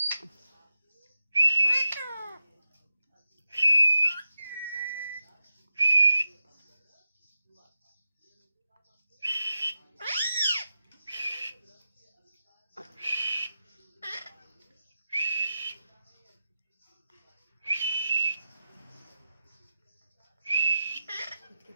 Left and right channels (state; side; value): inverted; both; correlation -0.91